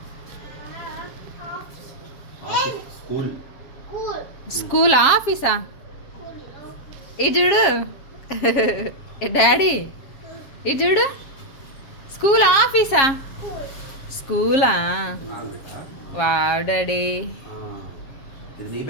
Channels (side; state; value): right; late; 7.4 ms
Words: స్కూల్ ఆఫీసా? ఇది చూడు డాడీ, ఇది చూడు స్కూల్ ఆఫీసా? స్కూలా? Wow daddy.